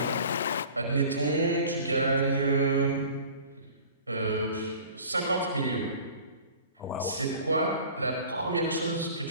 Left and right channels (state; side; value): inverted; both; correlation -0.44